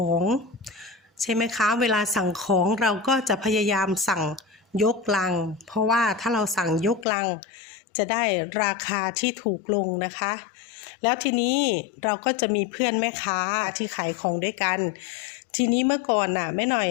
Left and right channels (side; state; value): right; drops out; at 7.1 s